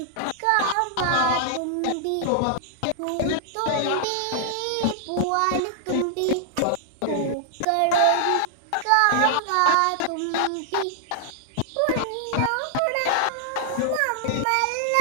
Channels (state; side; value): different; both; correlation -0.01